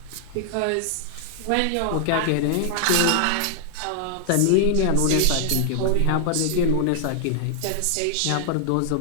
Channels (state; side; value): different; both; correlation -0.01